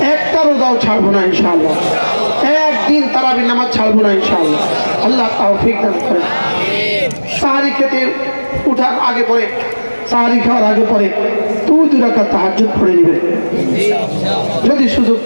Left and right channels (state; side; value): inverted; both; correlation -1.00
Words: একটা রোজাও ছাড়বো না ইনশাআল্লাহ। একদিন তারাবির নামাজ ছাড়বো না ইনশাআল্লাহ। আল্লাহ তৌফিক দান করেন। সাহারি খেতে উঠার আগে পরে, সাহারি খাওয়ার আগে পরে 2 রাকাত তাহাজ্জুদ পড়ে নেবেন। যদি সুযোগ